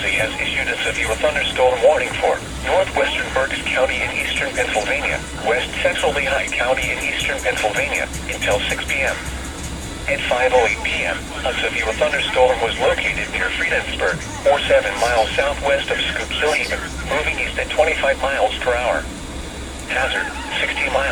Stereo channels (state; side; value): identical; both; correlation 1.00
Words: has issued a severe thunderstorm warning for northwestern Berks County in eastern Pennsylvania, west central Lehigh County in eastern Pennsylvania until 6 p.m. At 5:08 p.m., a severe thunderstorm was located near Friedensburg, or 7 miles southwest of Schuylkill Haven, moving east at 25 miles per hour. Hazard, 60